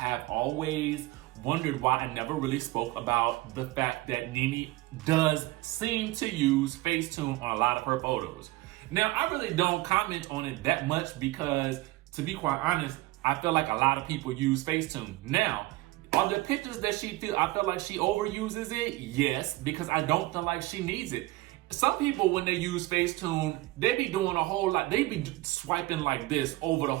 always wondered why I never really spoke about the fact that Nene does seem to use Facetune on a lot of her photos. Now, I really don't comment on it that much because, to be quite honest, I feel like a lot of people use Facetune. Now, are the pictures that I feel like she overuses it? Yes, because I don't feel like she needs it. Some people, when they use Facetune, they be doing a whole lot. They be swiping like this over the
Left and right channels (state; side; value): quieter; left; 19.4 dB